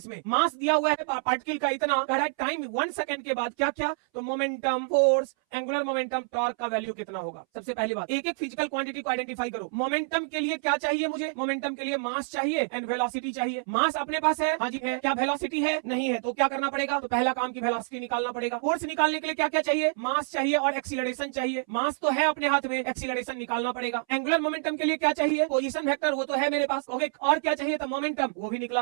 में, मास दिया हुआ है पार्टिकल का इतना, कह रहा है टाइम 1 सेकंड के बाद क्या क्या, तो momentum, force, angular momentum, torque का वैल्यू कितना होगा। सबसे पहली बात, एक एक फिजिकल क्वांटिटी को आइडेंटिफाई करो। मोमेंटम के लिए क्या चाहिए मुझे, मोमेंटम के लिए मास चाहिए एंड वेलोसिटी चाहिए। मास अपने पास है, हाँ जी है, क्या वेलोसिटी है, नहीं है, तो क्या करना पड़ेगा, तो पहला काम की वेलोसिटी निकालना पड़ेगा। फोर्स निकालने के लिए क्या क्या चाहिए, मास चाहिए और एक्सीलरेशन चाहिए, मास तो है अपने हाथ में, एक्सीलरेशन निकालना पड़ेगा। एंगुलर मोमेंटम के लिए क्या चाहिए, पोजीशन वेक्टर, वो तो है मेरे पास, ओके, और क्या चाहिए, तो मोमेंटम, वो भी निकला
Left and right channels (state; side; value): silent; left; 60 dB below the other